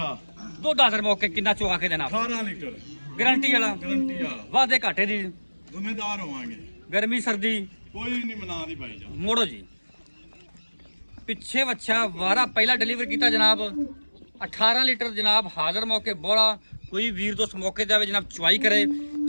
ਦੁੱਧ ਆਦਰ ਮੌਕੇ ਕਿੰਨਾ ਚੁਆ ਕੇ ਦੇਣਾ? 18 ਲੀਟਰ ਗਾਰੰਟੀ ਵਾਲਾ, ਗਰੰਟੀ ਵਾਲਾ, ਵਾਧੇ ਘਾਟੇ ਦੀ, ਜ਼ਿੰਮੇਦਾਰ ਹੋਵਾਂਗੇ। ਗਰਮੀ ਸਰਦੀ ਕੋਈ ਨਹੀਂ ਮਨਾ ਦੀ ਭਾਈ ਜਾਨ। ਮੋੜੋ ਜੀ। ਪਿੱਛੇ ਵੱਛਾ ਵਾਰਾ ਪਹਿਲਾ ਡਿਲੀਵਰ ਕੀਤਾ ਜਨਾਬ। 18 ਲੀਟਰ ਜਨਾਬ ਹਾਜ਼ਰ ਮੌਕੇ ਬੋਲਾ। ਕੋਈ ਵੀਰ ਦੋਸਤ ਮੌਕੇ ਤੇ ਆਵੇ ਜਨਾਬ ਚੁਆਈ ਕਰੇ।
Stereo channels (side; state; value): both; inverted; correlation -1.00